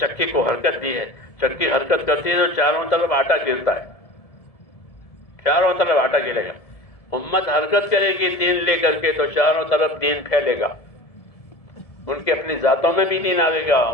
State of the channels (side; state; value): right; late; 1.7 ms